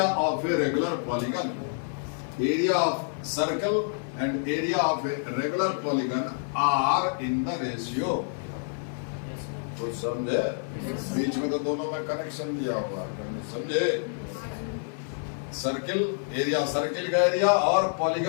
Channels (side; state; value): right; silent; 59 dB below the other